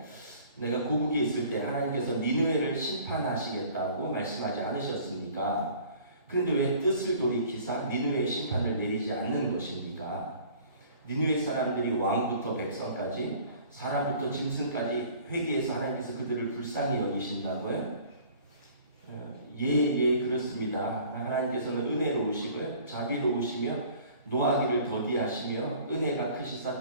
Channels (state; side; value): inverted; both; correlation -0.51